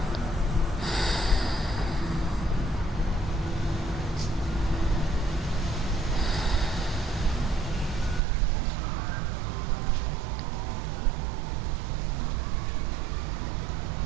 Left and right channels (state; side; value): drops out; left; at 8.2 s